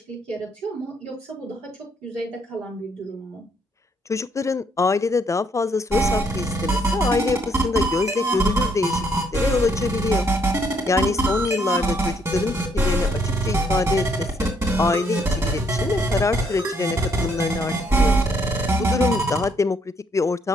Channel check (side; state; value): both; normal; correlation 0.69